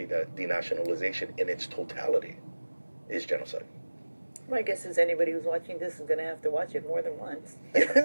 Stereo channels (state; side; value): inverted; both; correlation -1.00